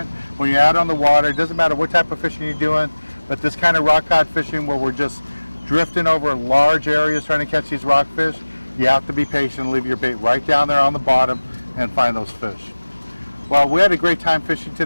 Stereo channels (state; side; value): inverted; both; correlation -1.00